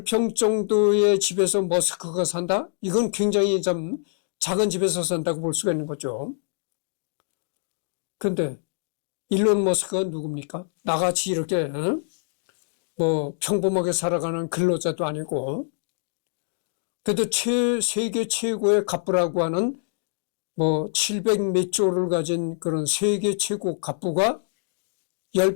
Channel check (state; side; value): silent; right; digital silence